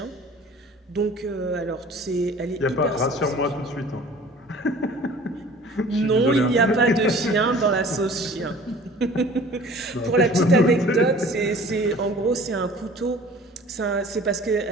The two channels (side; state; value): both; normal; correlation 0.47